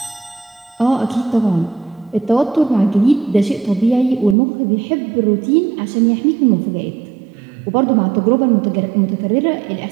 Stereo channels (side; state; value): left; drops out; at 4.4 s